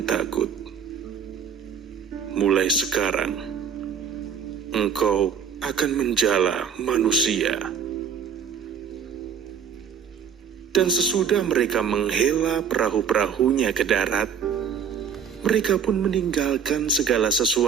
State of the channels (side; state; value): left; quieter; 7.3 dB